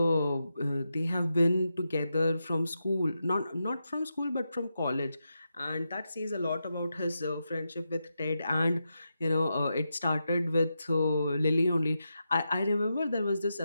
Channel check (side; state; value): both; inverted; correlation -0.87